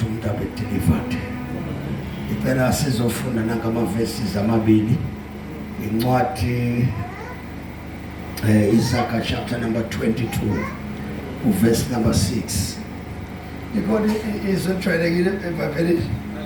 umuntu abe delivered impela sizofunda nangamavesi amabili incwadi Isaiah chapter number 22 verse number 6 ikhona izwi ejwayelekile eBhayibhelini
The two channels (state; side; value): identical; both; correlation 1.00